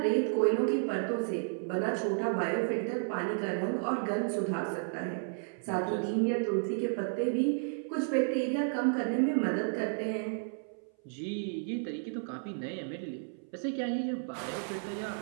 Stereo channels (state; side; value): silent; left; 56 dB below the other